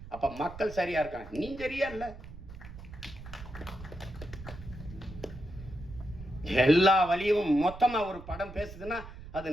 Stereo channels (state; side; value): noise; right; rumble, 14 dB below the sound